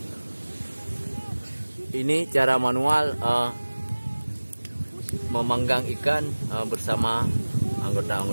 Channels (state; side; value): inverted; both; correlation -1.00